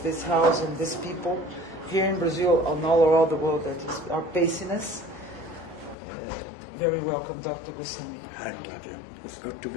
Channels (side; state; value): right; drops out; at 6.0 s